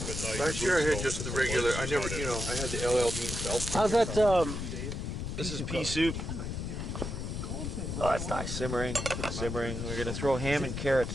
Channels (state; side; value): noise; left; rumble, 4 dB below the sound